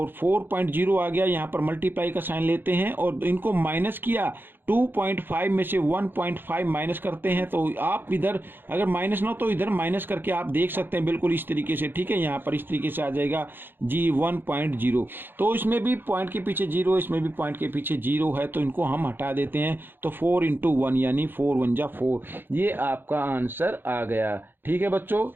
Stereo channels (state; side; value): late; left; 0.099 ms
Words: 4.0 आ गया। यहाँ पर मल्टीप्लाई का साइन लेते हैं और इनको माइनस किया, 2.5 में से 1.5 माइनस करते हैं। तो आप इधर अगर माइनस ना हो तो इधर माइनस करके आप देख सकते हैं बिल्कुल इस तरीके से, ठीक है। यहाँ पर इस तरीके से आ जाएगा जी 1.0। तो इसमें भी पॉइंट के पीछे 0, इसमें भी पॉइंट के पीछे 0 है, तो इनको हम हटा देते हैं। तो 4 × 1 यानी 4 × 1 = 4, ये आपका आंसर आ गया। ठीक है बच्चों,